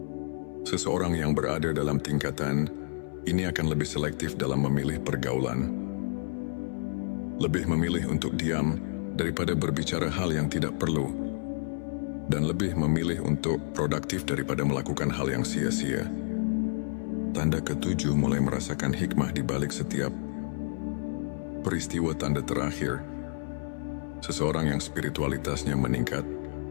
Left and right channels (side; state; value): right; silent; 58 dB below the other